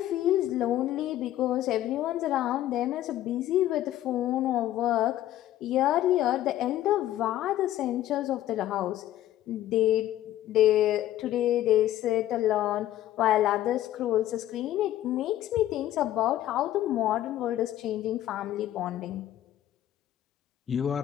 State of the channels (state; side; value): quieter; right; 13.3 dB